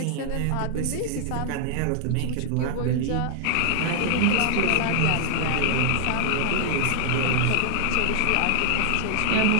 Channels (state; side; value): different; both; correlation 0.00